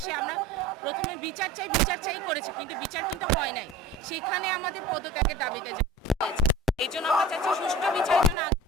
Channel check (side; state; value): both; normal; correlation 0.38